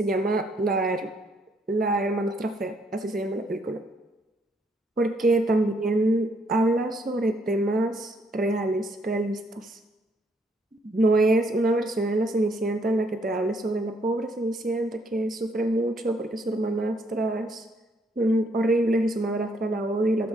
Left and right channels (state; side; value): normal; both; correlation 0.70